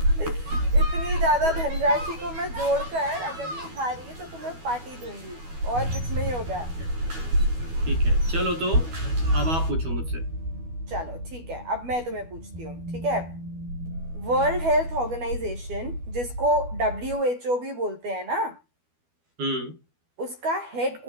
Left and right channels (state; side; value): late; left; 12 ms